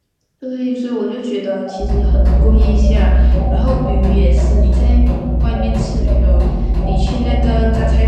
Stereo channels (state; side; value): identical; both; correlation 1.00